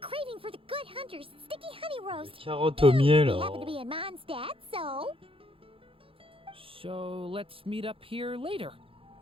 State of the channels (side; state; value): left; late; 0.26 ms